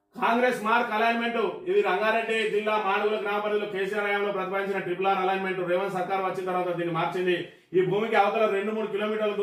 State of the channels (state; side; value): identical; both; correlation 1.00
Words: కాంగ్రెస్ మార్క్ అలైన్మెంట్. ఇది రంగారెడ్డి జిల్లా మాడుగుల గ్రామ పరిధిలో కేసీఆర్ హయాంలో ప్రతిపాదించిన ట్రిపుల్ అలైన్మెంట్ రేవంత్ సర్కార్ వచ్చిన తర్వాత దీన్ని మార్చింది. ఈ భూమికి అవతల 2-3 కిలోమీటర్ల